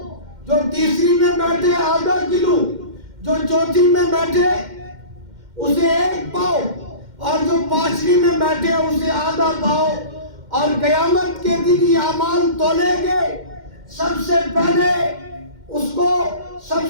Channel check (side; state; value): left; late; 2.1 ms